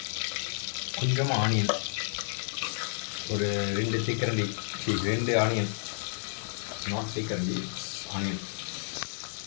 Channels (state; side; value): silent; right; 57 dB below the other